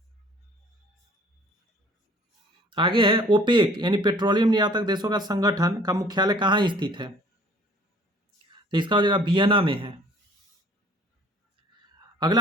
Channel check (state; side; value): normal; both; correlation 0.53